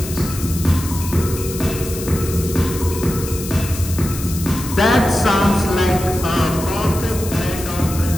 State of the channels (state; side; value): noise; left; hiss, 10 dB below the sound